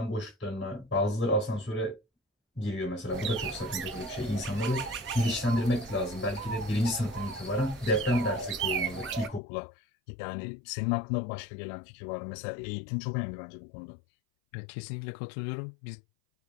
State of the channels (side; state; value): right; drops out; at 9.4 s